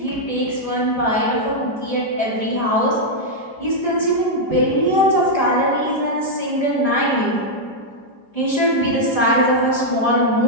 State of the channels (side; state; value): right; late; 4.9 ms